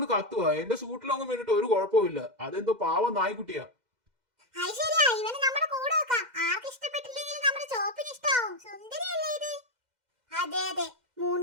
കത്തുവാ. എന്റെ സൂട്ടിലൊന്നും വേണ്ടിട്ട് ഒരു കുഴപ്പമില്ല. അതെന്തോ പാവം നായ്ക്കുട്ടിയാ. അതെ,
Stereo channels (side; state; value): left; late; 2.1 ms